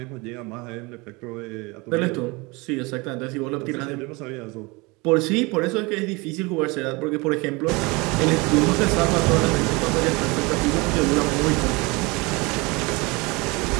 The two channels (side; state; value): left; quieter; 25.8 dB